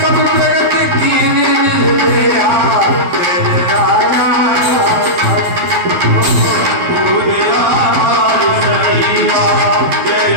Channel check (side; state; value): left; late; 12 ms